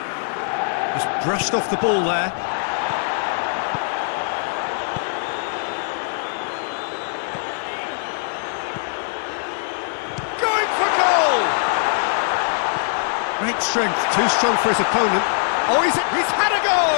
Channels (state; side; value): silent; right; 64 dB below the other